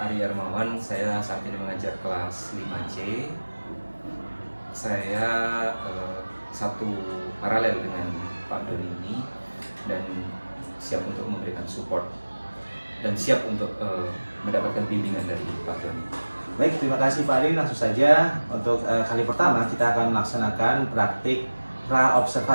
Ari Armawan. Saya saat ini mengajar kelas 5C. Saya satu paralel dengan Pak Doni ini dan siap untuk memberikan support dan siap untuk mendapatkan bimbingan dari Pak Doni. Baik, terima kasih Pak Ari. Langsung saja untuk kali pertama kita akan melaksanakan praktik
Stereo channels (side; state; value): both; inverted; correlation -1.00